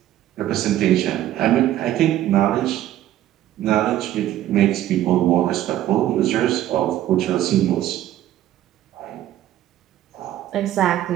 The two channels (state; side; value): quieter; left; 13.0 dB